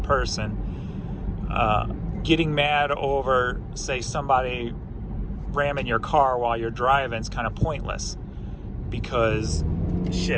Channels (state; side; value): identical; both; correlation 1.00